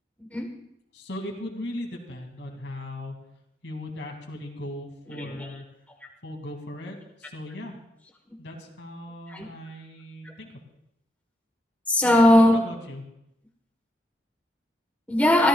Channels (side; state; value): both; normal; correlation 0.80